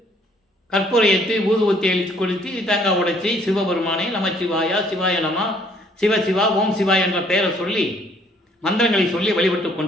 கற்பூரை ஏற்றி ஊதுவத்தி அழித்து கொளுத்தி தேங்காய் உடைச்சி சிவபெருமானை நமச்சிவாயா சிவாய நம சிவசிவா ஓம் சிவா என்ற பெயரை சொல்லி மந்திரங்களை சொல்லி வழிபட்டு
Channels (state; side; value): normal; both; correlation 0.62